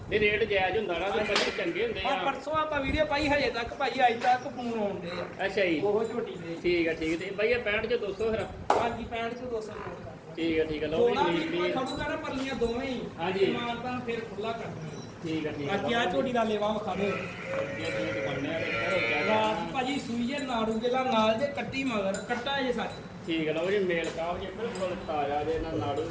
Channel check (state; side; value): identical; both; correlation 1.00